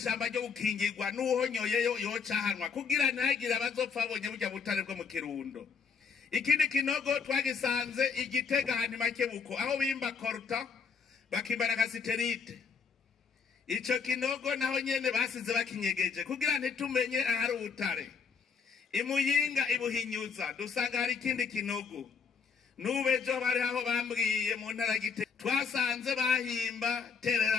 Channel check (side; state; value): right; quieter; 5.8 dB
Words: ryo gukingirwa n'uhonyoyeyo yocahanwa kugira ntagire abazopfa babonye burya butare bwo mu Kirundo. Ikindi kinogo twagisanze Igitega handi Makebuko aho bimba korta bakimbana kasiterite. Ico kinogo naho nyene basize bakinyegeje kugira ntitumenye ahari ubutare. Imuyinga Ibuhinyuza dusanga hari ikindi kinogo. Nubejo bari aho bambwiye mu ntara Gitega twasanze bahimba